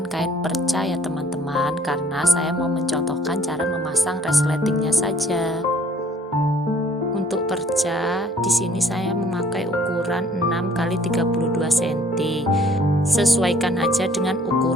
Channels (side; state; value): both; normal; correlation 0.58